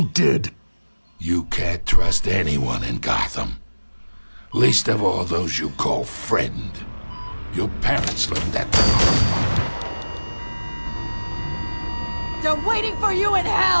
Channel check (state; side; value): inverted; both; correlation -1.00